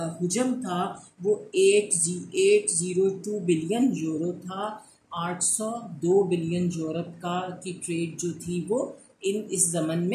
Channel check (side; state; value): both; identical; correlation 1.00